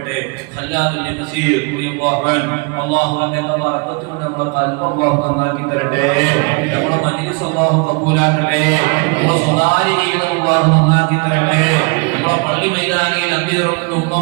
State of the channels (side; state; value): left; quieter; 31.1 dB